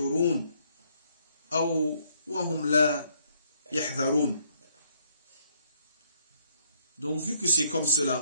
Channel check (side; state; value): both; inverted; correlation -0.69